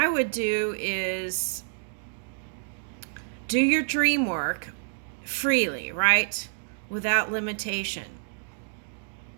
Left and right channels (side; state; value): left; silent; digital silence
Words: would do is do your dream work freely, right? Without limitation.